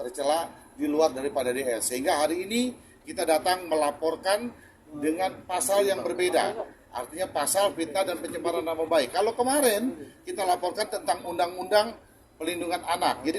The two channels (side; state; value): both; identical; correlation 1.00